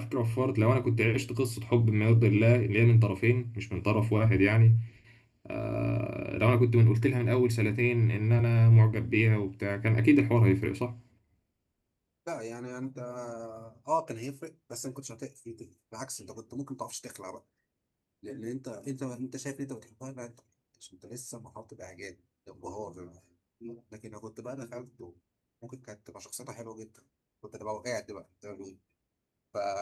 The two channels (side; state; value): both; identical; correlation 1.00